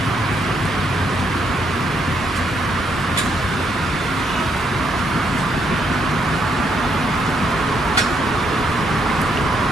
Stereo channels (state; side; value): normal; both; correlation 0.74